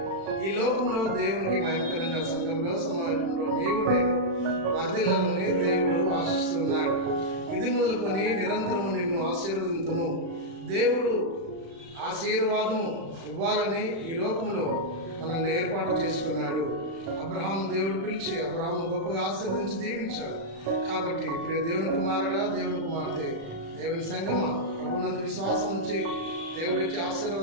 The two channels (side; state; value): left; late; 36 ms